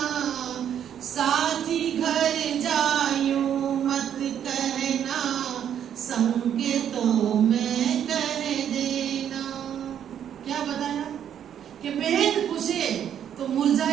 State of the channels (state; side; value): quieter; left; 9.4 dB